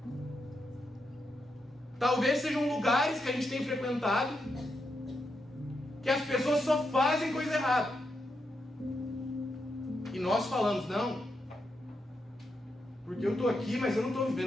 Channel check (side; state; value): both; normal; correlation 0.84